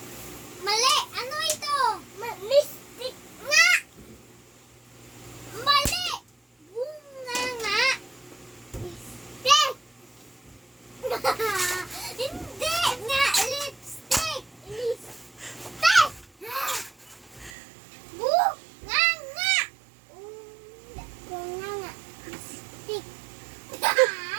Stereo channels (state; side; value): drops out; left; at 17.5 s